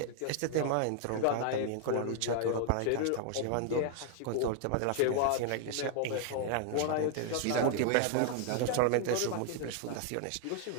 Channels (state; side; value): different; both; correlation 0.00